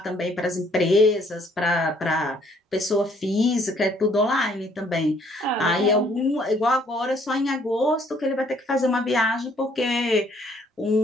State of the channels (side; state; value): both; normal; correlation 0.64